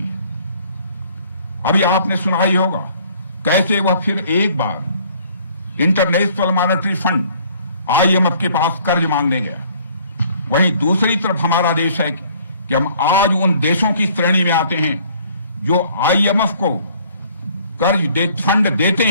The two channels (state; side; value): inverted; both; correlation -0.58